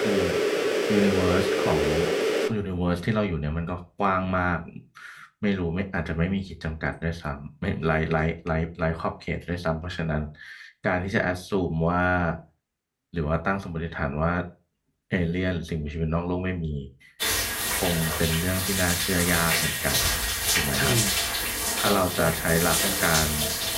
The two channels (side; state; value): both; identical; correlation 1.00